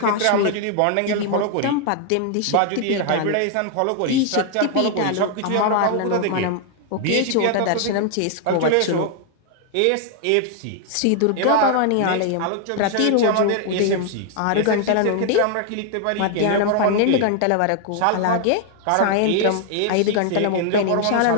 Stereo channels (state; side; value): different; both; correlation 0.00